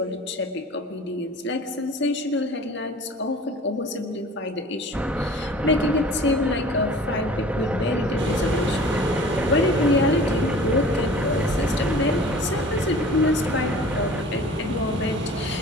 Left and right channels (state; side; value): normal; both; correlation 0.44